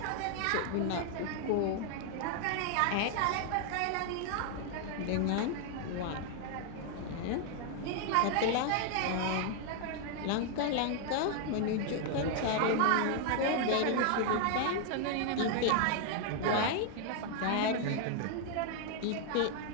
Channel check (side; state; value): both; different; correlation 0.00